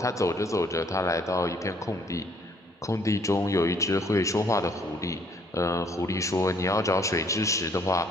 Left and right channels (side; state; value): both; normal; correlation 0.64